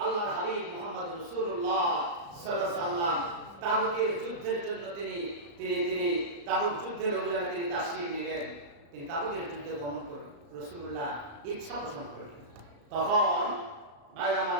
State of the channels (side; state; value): left; late; 35 ms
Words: আল্লাহর হাবিব মুহাম্মদ রাসূলুল্লাহ সাল্লাল্লাহু আলাইহি ওয়াসাল্লাম তাবুকের যুদ্ধের জন্য তিনি তাবুক যুদ্ধের অভিযানে তিনি তাশরীফ নিলেন। তিনি তাবুকের যুদ্ধে গমন করলেন, রাসূলুল্লাহ ইচ্ছা পোষণ করলেন। তখন ভাই আমার